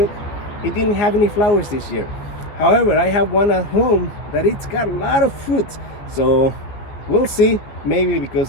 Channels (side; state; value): right; late; 15 ms